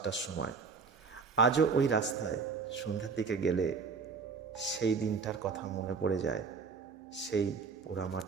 সময়। আজও ওই রাস্তায় সন্ধ্যার দিকে গেলে সেই দিনটার কথা মনে পড়ে যায়, সেই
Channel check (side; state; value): left; quieter; 5.2 dB